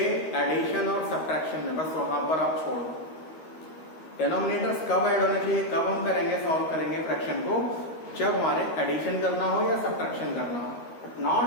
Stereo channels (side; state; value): right; late; 13 ms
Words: एडिशन और सब्ट्रैक्शन में, बस वहां पर आप छोड़ दो। डिनोमिनेटर्स कब ऐड होने चाहिए, कब हम करेंगे, सॉल्व करेंगे फ्रैक्शन को, जब हमारे एडिशन करना हो या सब्ट्रैक्शन करना हो, but